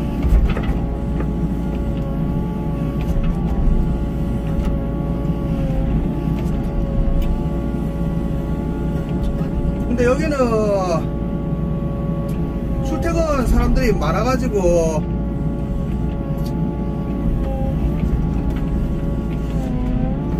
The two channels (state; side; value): identical; both; correlation 1.00